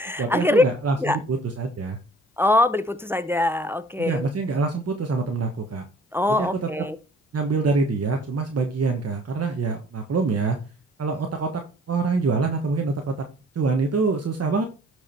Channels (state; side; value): normal; both; correlation 0.54